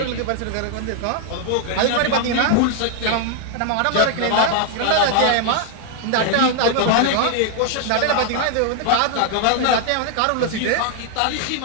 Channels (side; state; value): both; different; correlation 0.00